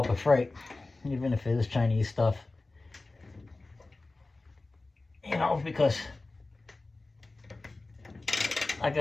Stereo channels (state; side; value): quieter; right; 3.3 dB